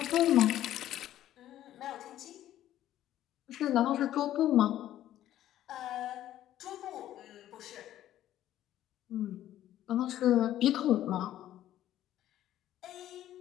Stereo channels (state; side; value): quieter; right; 12.7 dB